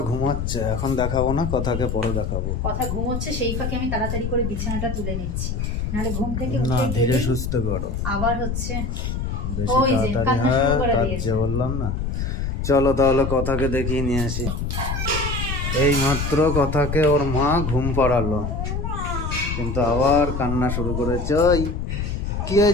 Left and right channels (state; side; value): noise; left; rumble, 2 dB below the sound